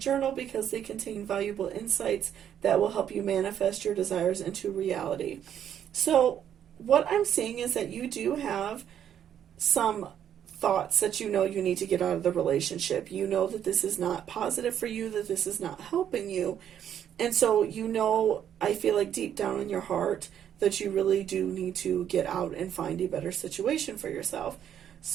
because they contain valuable insights that will help you manifest your desires into reality. So what I'm seeing is that you do have some thoughts that you know you need to get out of the relationship. You know that this is not positive for you, that this is not helping you. And so, you know, I feel like deep down in your heart that you really do need to get out and find a better situation for yourself.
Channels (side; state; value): left; quieter; 9.6 dB